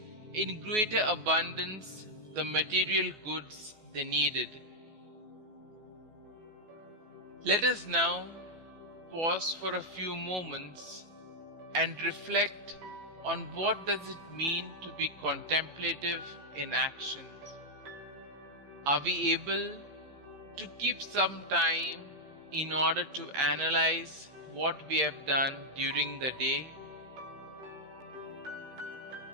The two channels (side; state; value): left; late; 14 ms